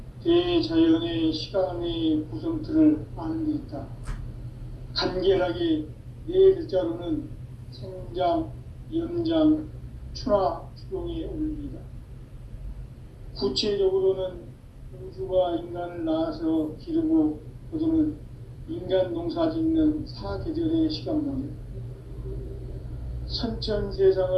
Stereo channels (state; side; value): identical; both; correlation 1.00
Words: 대자연의 시간의 구성틀을 아는 데 있다. 간결하게 네 글자로는 생장, 연장, 추나 추동의 원리이다. 구체적으로는 우주가 인간을 낳아서 기르고 거두는 인간 농사 짓는 사계절의 시간론이다.